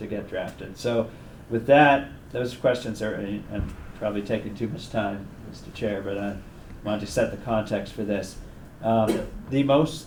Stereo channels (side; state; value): both; identical; correlation 1.00